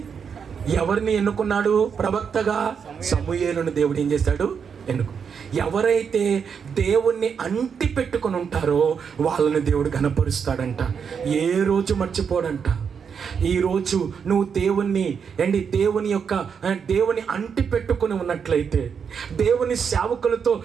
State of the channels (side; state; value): left; quieter; 6.7 dB